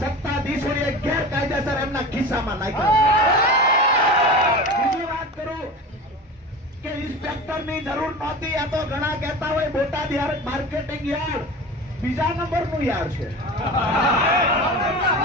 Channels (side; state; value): both; normal; correlation 0.32